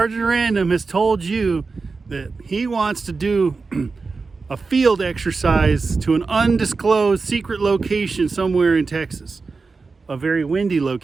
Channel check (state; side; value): quieter; left; 4.3 dB